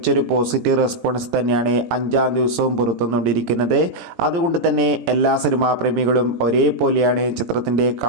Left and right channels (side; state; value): left; late; 17 ms